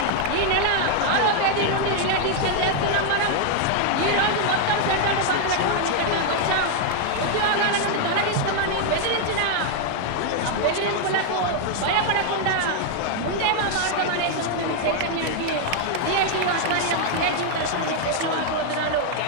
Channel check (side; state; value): both; different; correlation 0.00